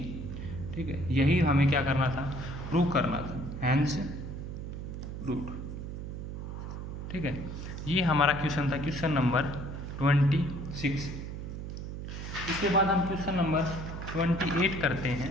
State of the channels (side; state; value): right; noise; hum, 7 dB below the sound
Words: ठीक है, यही हमें क्या करना था, प्रूव करना था, हैंस प्रूव्ड। ठीक है, ये हमारा क्वेश्चन था, क्वेश्चन नंबर 26। इसके बाद हम क्वेश्चन नंबर 28 करते हैं।